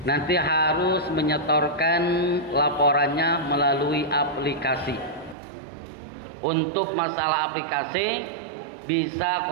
nanti harus menyetorkan laporannya melalui aplikasi. Untuk masalah aplikasi bisa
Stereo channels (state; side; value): drops out; left; at 5.4 s